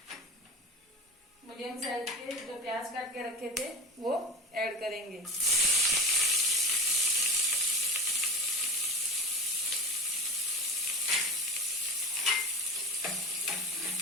मीडियम साइज के जो प्याज काट के रखे थे वो ऐड करेंगे।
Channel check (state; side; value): normal; both; correlation 0.32